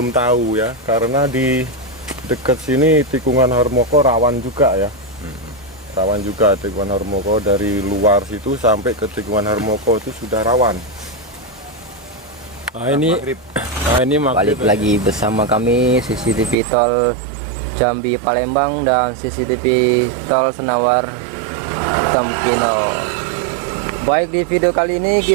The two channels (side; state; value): left; drops out; at 16.6 s